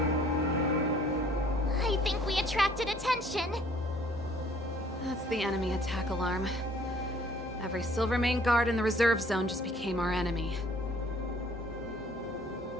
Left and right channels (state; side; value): normal; both; correlation 0.58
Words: I think we attracted attention. That's the enemy attack alarm. Every Silvermane guard in the reserve zone just became our enemy.